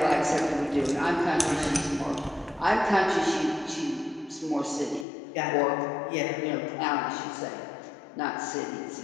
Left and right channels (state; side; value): drops out; right; at 5.1 s